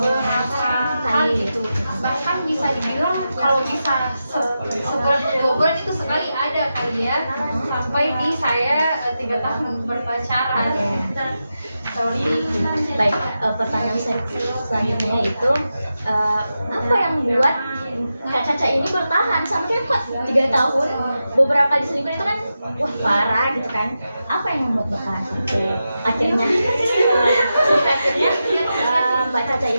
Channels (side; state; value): both; inverted; correlation -0.90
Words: kali gitu. Bahkan bisa dibilang kalau bisa sebulan 2 bulan itu sekali ada kali ya, sampai di saya 3 tahun berpacaran. Baik, pertanyaan saya selanjutnya itu apa yang membuat Kak Caca ini bertahan sampai kok 3 tahun, beberapa kali selingkuh itu kan wah parah gitu kan? Apa yang membuat bertahan sampai akhirnya Mbak Caca